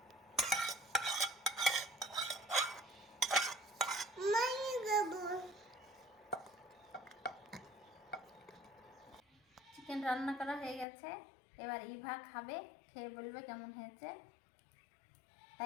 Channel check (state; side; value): drops out; right; at 10.9 s